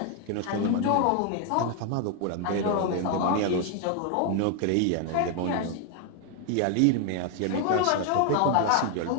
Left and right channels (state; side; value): different; both; correlation 0.00